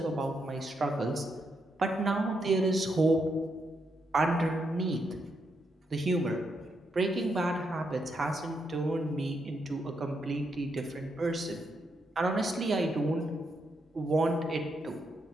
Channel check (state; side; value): normal; both; correlation 0.80